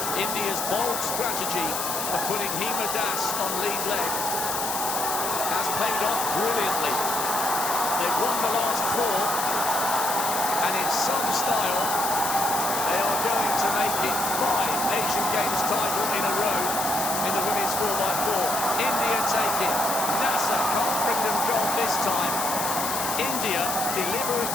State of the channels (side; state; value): left; noise; hiss, 2 dB below the sound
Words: India's bold strategy of putting Hima Das on lead leg has paid off brilliantly. They've won the last 4, and in some style, they are going to make it 5 Asian Games title in a row in the women's 4x4. India take it. Nasser can't bring them gold this time. India deliver